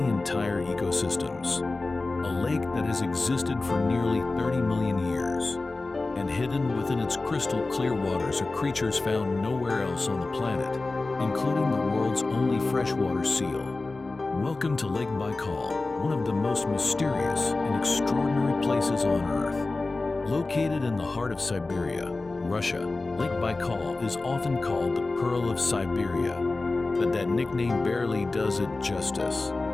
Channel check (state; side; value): quieter; right; 3.4 dB